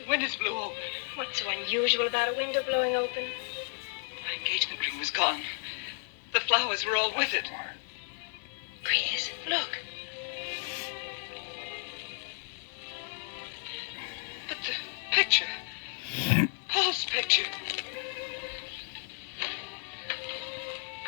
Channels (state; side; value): silent; right; 56 dB below the other